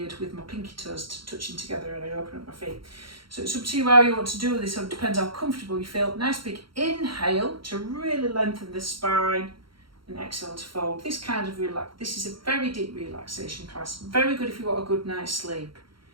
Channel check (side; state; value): left; late; 0.73 ms